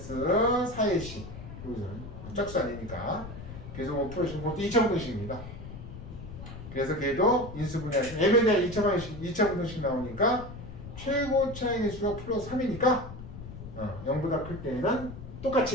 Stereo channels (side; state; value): left; noise; rumble, 12 dB below the sound